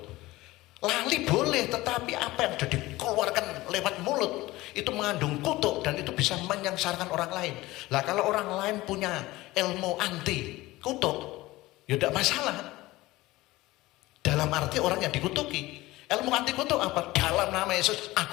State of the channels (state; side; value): quieter; right; 18.8 dB